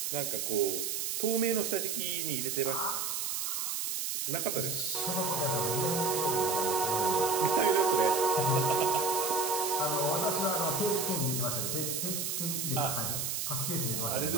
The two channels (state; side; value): noise; right; hiss, 1 dB below the sound